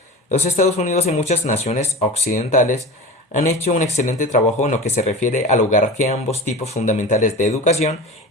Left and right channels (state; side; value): normal; both; correlation 0.32